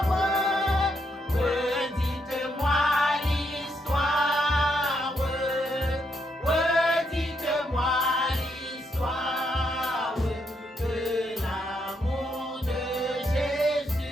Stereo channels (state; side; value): normal; both; correlation 0.77